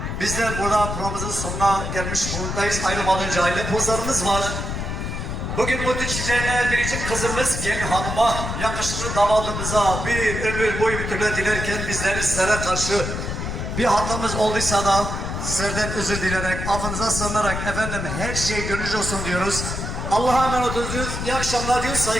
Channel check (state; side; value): noise; left; rumble, 4 dB below the sound